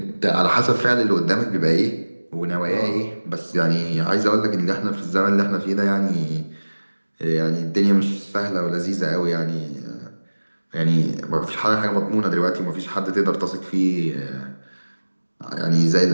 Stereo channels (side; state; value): both; inverted; correlation -1.00